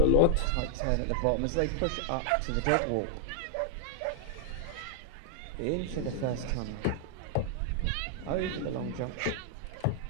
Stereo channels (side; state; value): both; different; correlation 0.00